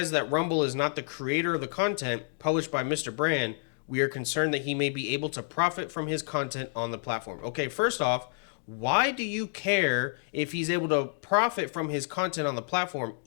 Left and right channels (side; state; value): right; silent; digital silence